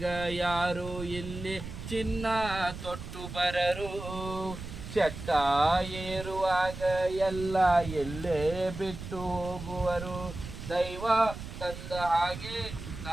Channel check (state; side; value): noise; right; rumble, 10 dB below the sound